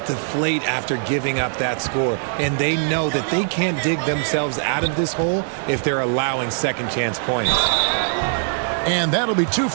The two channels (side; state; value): left; silent; digital silence